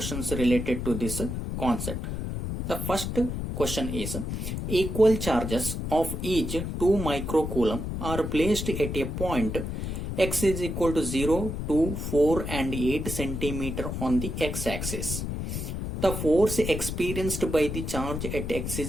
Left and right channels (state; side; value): noise; left; rumble, 4 dB below the sound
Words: related to this concept. The first question is, equal charges of each 2 microcoulomb are placed at a point x is equal to 0, 2, 4 and 8 centimeter on the x-axis. The force experienced by the charge at x